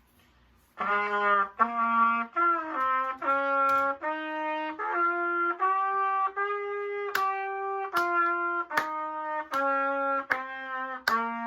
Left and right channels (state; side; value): identical; both; correlation 1.00